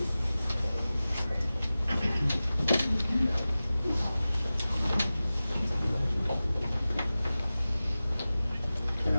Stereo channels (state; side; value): inverted; both; correlation -0.96